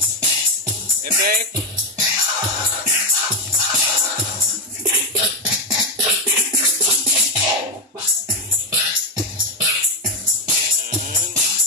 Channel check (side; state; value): both; normal; correlation 0.06